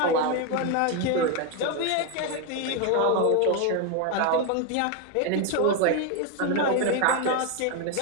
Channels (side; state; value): both; different; correlation 0.02